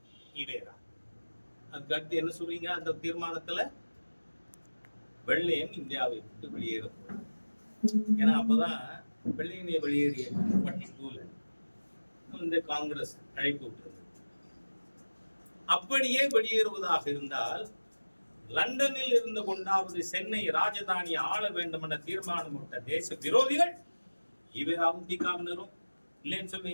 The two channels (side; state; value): both; inverted; correlation -1.00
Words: ஈவேரா. அதுக்கு அடுத்து என்ன சொல்றீங்க? அந்த தீர்மானத்துல வெள்ளையன் இந்தியாவை விட்டு வெளியேறும். ஏன்னா அப்பதான் வெள்ளையனை வெளியேறிய 42ல இந்த காங்கிரஸ் அழைப்பு விட்டுருந்தது. அப்படியே வெளியேறுவதாக இருந்தால் லண்டனில் இருந்து கொண்டாவது சென்னை ராஜதானியை ஆள வேண்டும் என்ற தீர்மானம் விட்ட தேச விரோதிகள் ஈவேராவும் தீகாவினரும் இல்லைன்னு